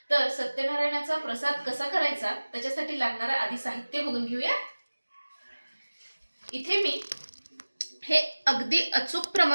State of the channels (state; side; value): inverted; both; correlation -1.00